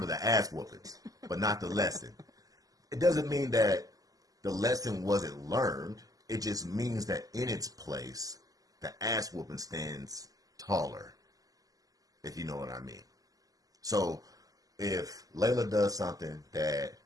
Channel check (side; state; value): left; late; 0.17 ms